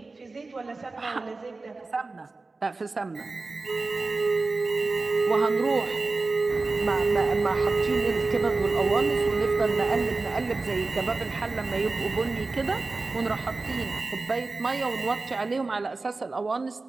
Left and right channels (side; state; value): left; quieter; 3.6 dB